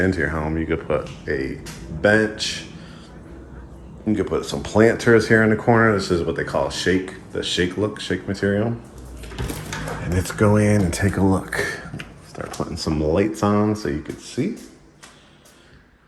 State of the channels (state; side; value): identical; both; correlation 1.00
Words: your home, you could put a bench. You could put some planters here in the corner. This is what they call shake, the shake material. And let's go in and take a look. Start putting some lights on so you can see.